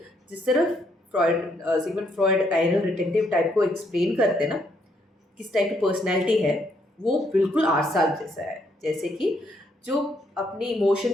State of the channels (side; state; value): both; normal; correlation 0.72